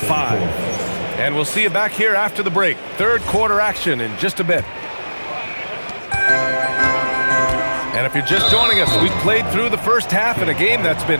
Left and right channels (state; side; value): inverted; both; correlation -1.00